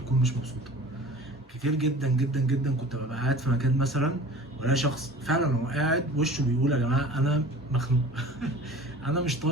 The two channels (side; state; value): both; normal; correlation 0.42